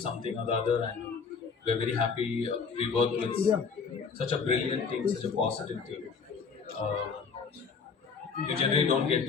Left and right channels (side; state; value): right; quieter; 5.5 dB